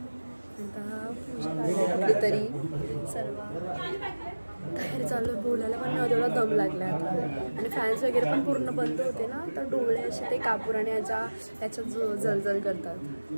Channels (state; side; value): inverted; both; correlation -1.00